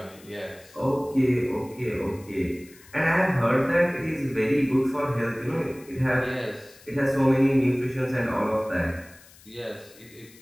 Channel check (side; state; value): left; noise; hiss, 24 dB below the sound